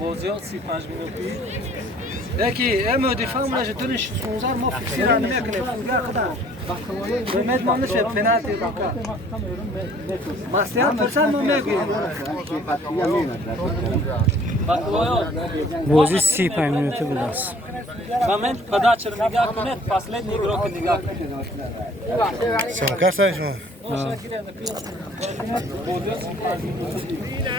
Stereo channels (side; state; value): both; normal; correlation 0.56